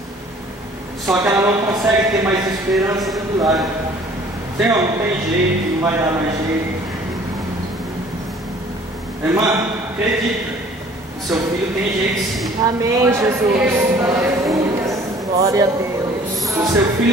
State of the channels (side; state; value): both; normal; correlation 0.53